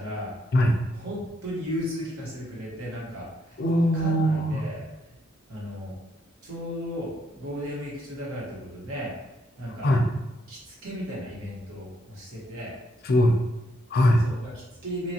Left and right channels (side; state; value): both; normal; correlation 0.76